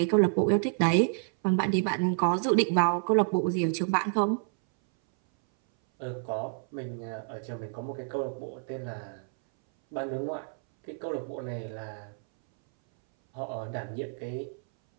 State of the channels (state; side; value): silent; left; 59 dB below the other